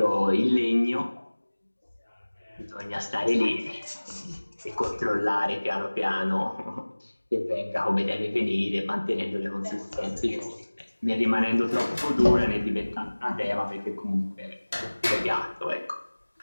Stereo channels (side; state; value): both; inverted; correlation -1.00